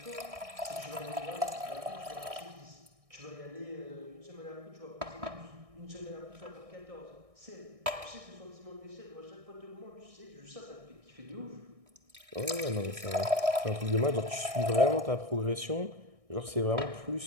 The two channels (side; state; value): left; late; 1.6 ms